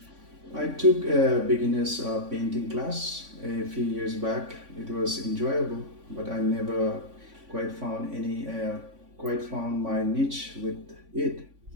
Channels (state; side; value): late; left; 3.5 ms